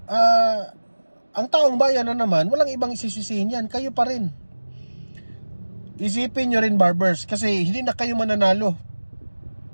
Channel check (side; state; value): both; inverted; correlation -1.00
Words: ang taong bayan na naman, walang ibang isisisihin yan. Kayo pa rin. Isipin nyo rin, Barbers, kasi hindi na kayo mananalo.